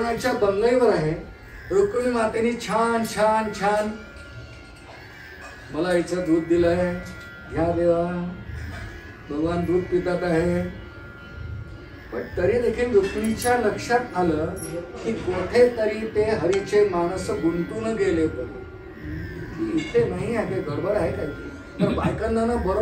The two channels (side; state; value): both; identical; correlation 1.00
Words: बंगईवर आहे. रुक्मिणी मातेने छान छान छान मला इथं दूध दिलंय, घ्या देवा. भगवान दूध पितात आहे. पण तरी देखील रुक्मिणीच्या लक्षात आलं की कोठे तरी ते हरीचे मानस गुंतून गेले परी. इथे नाही आहे, गडबड आहे काय. तर बायकांना ना